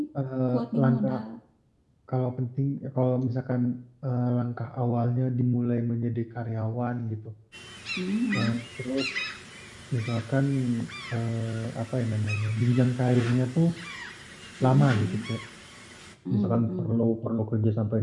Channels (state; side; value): identical; both; correlation 1.00